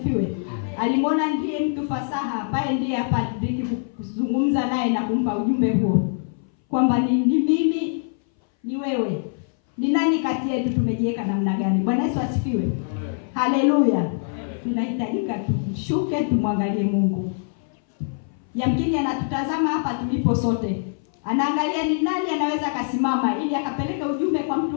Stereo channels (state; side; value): silent; right; 60 dB below the other